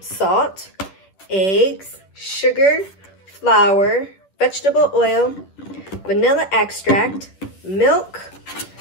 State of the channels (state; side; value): late; right; 10 ms